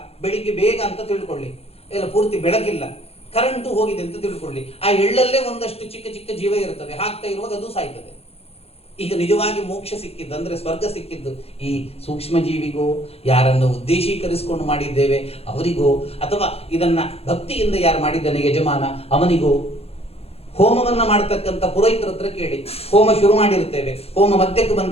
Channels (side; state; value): right; late; 0.29 ms